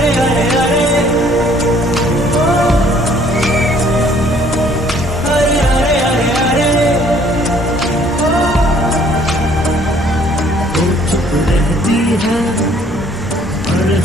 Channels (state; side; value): normal; both; correlation 0.60